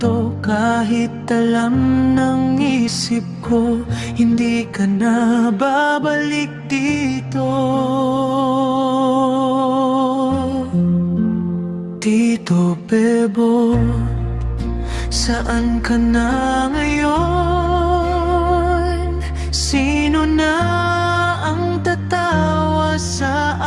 Kahit alam ng isip ko, hindi ka na babalik dito. Tito Bebo, saan ka na ngayon? Sino na ang tatawa sa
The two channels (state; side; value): identical; both; correlation 1.00